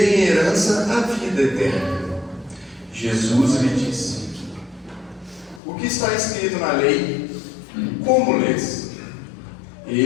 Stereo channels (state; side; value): drops out; right; at 5.6 s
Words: em herança a vida eterna? Jesus lhe disse: O que está escrito na lei? Como lês?